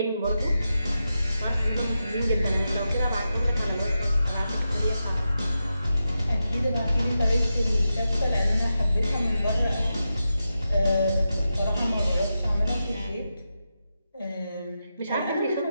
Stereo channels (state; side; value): inverted; both; correlation -0.89